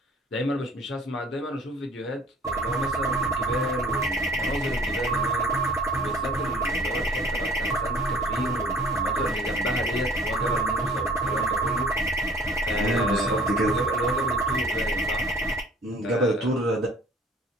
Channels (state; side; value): normal; both; correlation 0.51